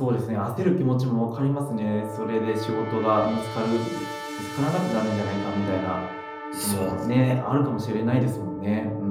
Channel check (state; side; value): identical; both; correlation 1.00